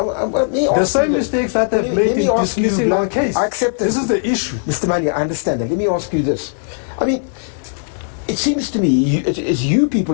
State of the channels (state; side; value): silent; right; 66 dB below the other